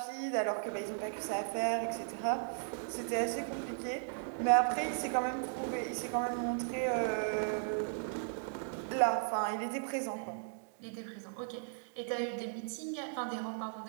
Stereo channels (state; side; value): silent; left; digital silence